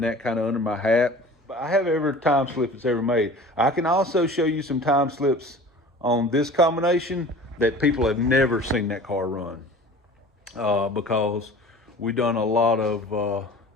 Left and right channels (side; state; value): both; normal; correlation 0.42